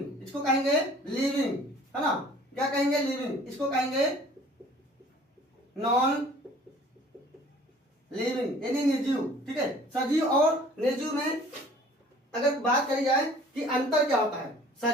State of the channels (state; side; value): normal; both; correlation 0.51